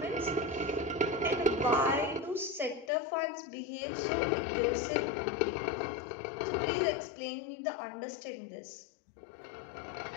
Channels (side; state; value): right; drops out; at 2.9 s